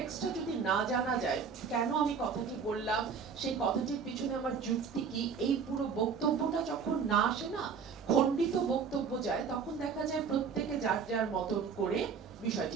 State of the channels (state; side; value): quieter; left; 6.0 dB